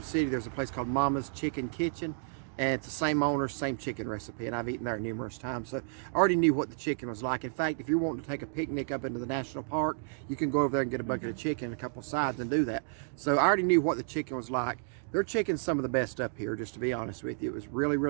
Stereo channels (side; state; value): left; silent; digital silence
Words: City. There's a place called Mama's Chicken Kitchen, and it's the same owner, same chicken recipe, and I've eaten there numerous times. So I already knew what the chicken was like. In fact, if you're wanting to take a picnic up into the national park, you can go over there and get a bucket of chicken and a couple of sides and do that. So I already knew what the chicken was like. Their chicken's some of the best up here, just to be honest with you. It was really,